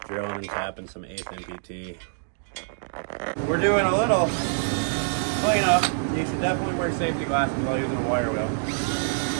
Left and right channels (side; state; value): left; silent; digital silence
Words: Drilling and tapping some 8th MPT. We're doing a little cleanup. You should definitely wear safety glasses while using a wire wheel.